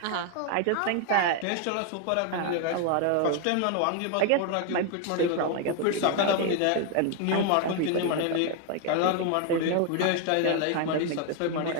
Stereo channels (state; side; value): different; both; correlation 0.01